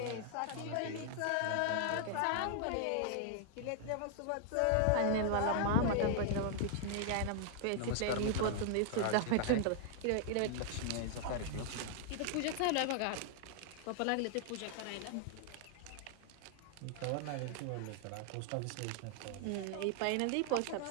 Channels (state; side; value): different; both; correlation 0.00